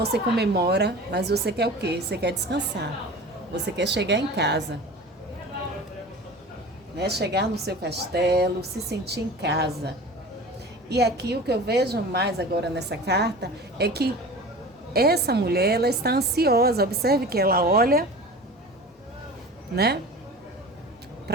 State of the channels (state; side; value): normal; both; correlation 0.37